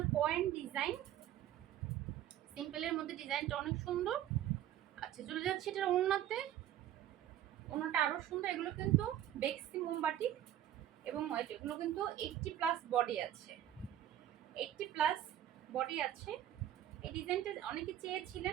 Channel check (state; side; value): quieter; left; 11.9 dB